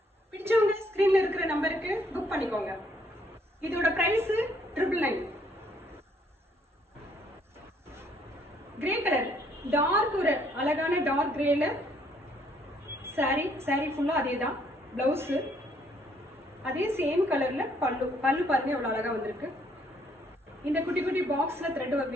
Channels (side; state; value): both; normal; correlation 0.67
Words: பிடிச்சவங்க ஸ்கிரீன்ல இருக்கிற நம்பருக்கு புக் பண்ணிக்கோங்க. இதோட பிரைஸ் 999. கிரே கலர், டார்க், ஒரு அழகான டார்க் கிரேல சாரி ஃபுல்லா அதே தான். பிளவுஸ் அதே சேம் கலர்ல பல்லு. பல்லு பாருங்க எவ்வளவு அழகா வந்திருக்கு. இந்த குட்டி குட்டி பாக்ஸ்ல த்ரெட்